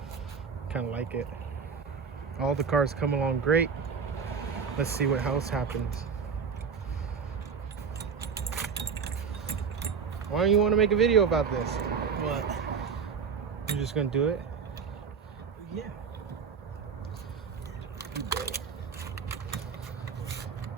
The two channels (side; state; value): left; quieter; 6.0 dB